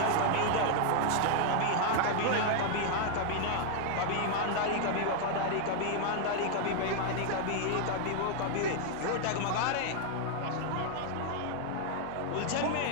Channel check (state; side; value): different; both; correlation 0.00